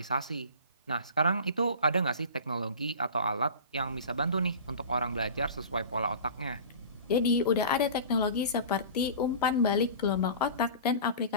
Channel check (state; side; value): inverted; both; correlation -0.37